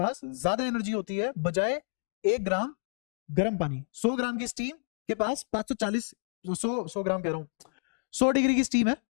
ज्यादा एनर्जी होती है बजाय 1 ग्राम गर्म पानी। 100 ग्राम की स्टीम के पास 540, 100 ग्राम कह रहा हूँ, 100 डिग्री की स्टीम है,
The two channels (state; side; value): silent; right; digital silence